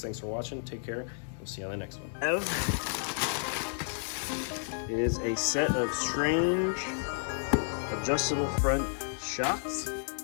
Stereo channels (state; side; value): silent; right; digital silence